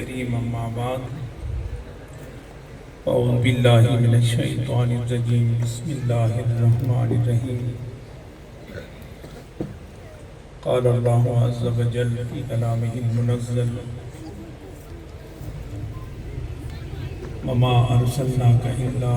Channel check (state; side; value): identical; both; correlation 1.00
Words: أما بعد أعوذ بالله من الشيطان الرجيم بسم الله الرحمن الرحيم قال الله عز وجل في كلامه المنزل وما أرسلناك إلا